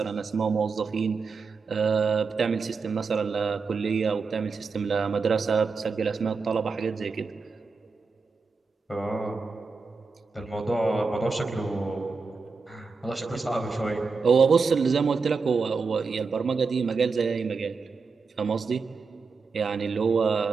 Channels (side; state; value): left; quieter; 4.7 dB